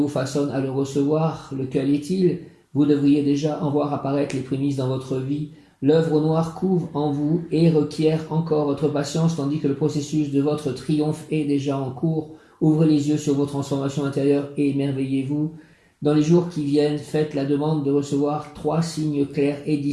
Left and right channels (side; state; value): both; identical; correlation 1.00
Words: façonne à le recevoir. Lequel est-il? Vous devriez déjà en voir apparaître les prémices dans votre vie. L'œuvre au noir couvre en vous et requiert encore votre patience, tandis que le processus de votre triomphe est déjà en cours. Ouvrez les yeux sur vos transformations intérieures et émerveillez-vous. Dans les jours qui viennent, faites la demande de recevoir 3 signes clairs et